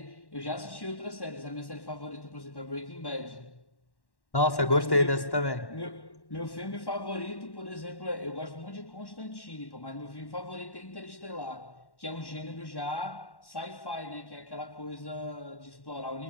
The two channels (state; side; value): late; right; 1.1 ms